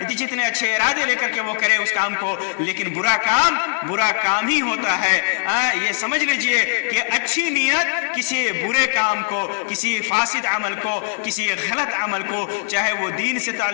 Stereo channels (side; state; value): right; silent; digital silence